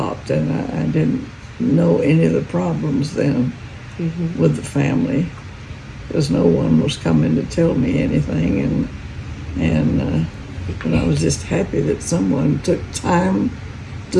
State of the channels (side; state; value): both; identical; correlation 1.00